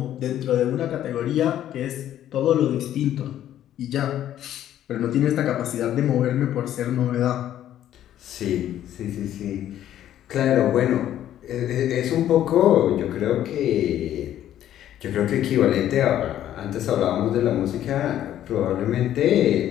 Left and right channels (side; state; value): right; quieter; 11.7 dB